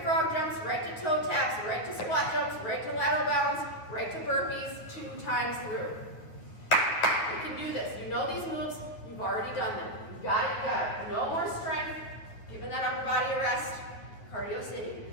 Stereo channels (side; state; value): right; late; 9.3 ms